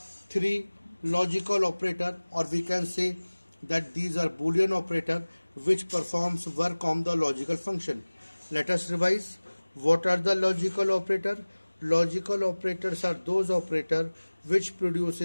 three logical operator, or we can say that these are Boolean operator which performs work on the logical function. Let us revise. What are the logical operator? Logical operators are those operator which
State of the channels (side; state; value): both; inverted; correlation -1.00